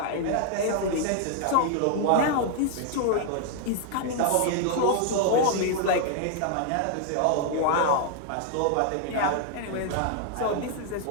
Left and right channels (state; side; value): different; both; correlation 0.00